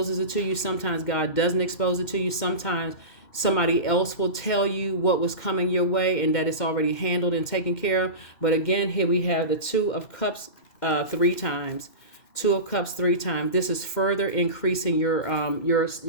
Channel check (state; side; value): late; right; 2.1 ms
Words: it to you. Sometimes God doesn't expose it to you. Sometimes somebody else will tell you what was coming your way and that it's already handled and taken care of. But again, here we have the Two of Cups 3 times. Two of Cups 3 times. This is further increasing your